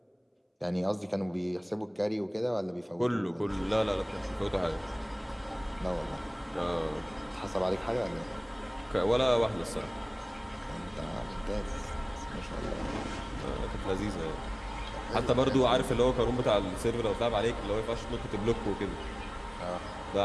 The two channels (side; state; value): both; identical; correlation 1.00